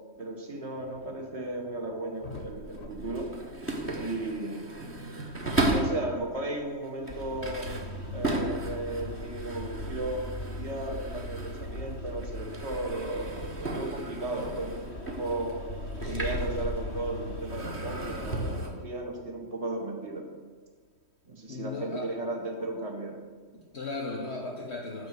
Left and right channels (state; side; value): late; right; 3.1 ms